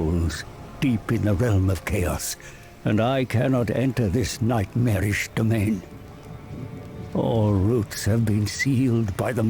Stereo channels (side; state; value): both; identical; correlation 1.00